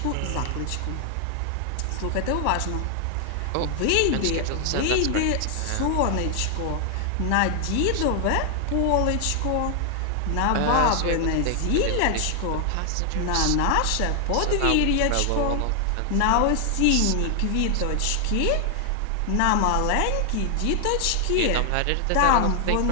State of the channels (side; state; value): both; different; correlation 0.00